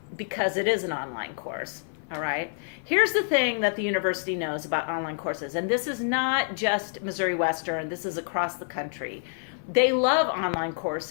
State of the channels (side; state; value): right; silent; 56 dB below the other